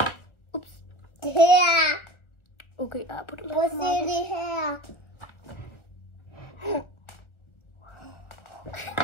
Ups. Her. Okay, jeg har puttet lidt Prøv at for se meget det her.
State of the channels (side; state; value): right; late; 1.4 ms